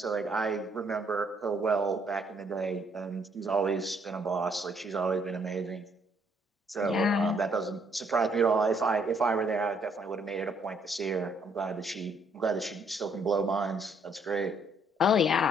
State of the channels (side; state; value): both; normal; correlation 0.68